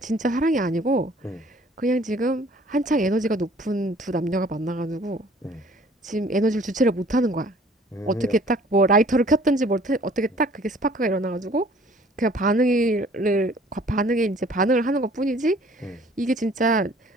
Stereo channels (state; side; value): normal; both; correlation 0.54